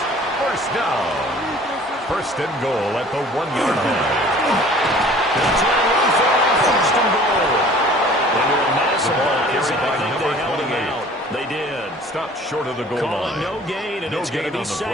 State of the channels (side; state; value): both; normal; correlation 0.49